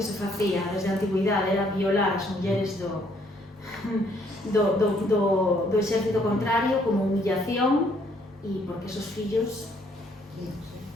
se facía desde a antigüidade era violar as mulleres do exército contrario como humillación, e porque esos fillos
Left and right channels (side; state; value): both; normal; correlation 0.66